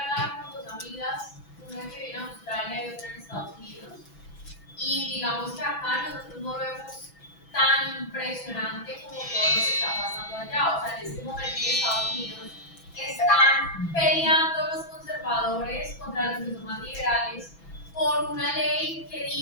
con dos amigas, una que vive en Australia y otra en Estados Unidos. Y digamos que acá nosotros no lo vemos tan impresionante como todo lo que está pasando allá. O sea, en este momento en Estados Unidos están peleando los conservadores contra los que son más liberales por una ley que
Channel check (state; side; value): late; right; 6.0 ms